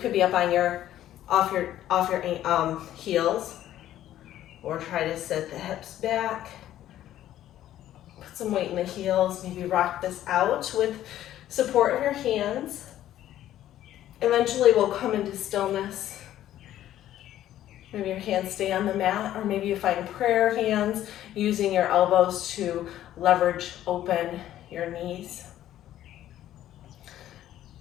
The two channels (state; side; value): quieter; right; 12.6 dB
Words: be up on off your heels, or try to sit the hips back. Put some weight in the heels. Maybe rock this out with support of your hands. Eventually, we'll come into stillness. Maybe your hands stay on the mat, or maybe you find prayer hands, using your elbows to leverage open your knees.